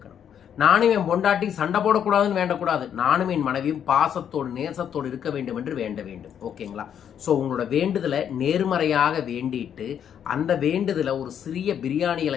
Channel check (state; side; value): quieter; right; 8.8 dB